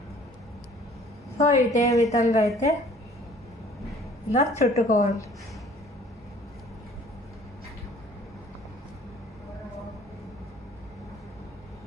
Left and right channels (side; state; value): both; normal; correlation 0.53